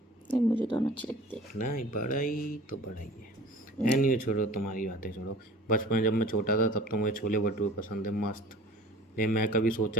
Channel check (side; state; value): both; normal; correlation 0.44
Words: नहीं, मुझे दोनों अच्छे लगते हैं। नहीं बड़ाई तो बड़ाई है। एनीवे छोड़ो, तुम्हारी बातें छोड़ो। बचपन जब मैं छोटा था तब तो मुझे छोले भटूरे पसंद है, मस्त। लेकिन मैं कभी